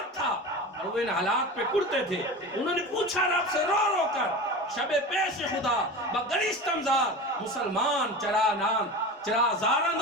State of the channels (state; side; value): normal; both; correlation 0.30